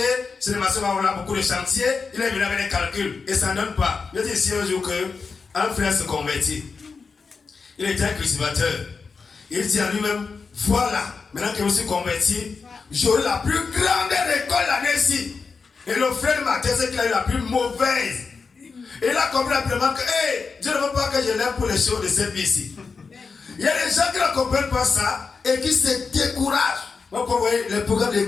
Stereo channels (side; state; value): right; quieter; 4.9 dB